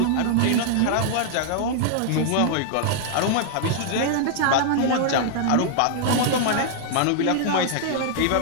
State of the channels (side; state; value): both; different; correlation -0.01